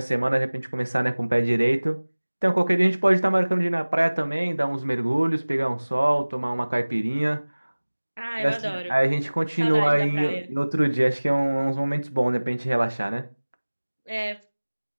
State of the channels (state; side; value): inverted; both; correlation -1.00